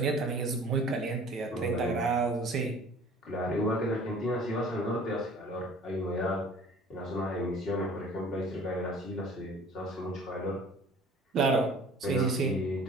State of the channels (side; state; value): both; normal; correlation 0.48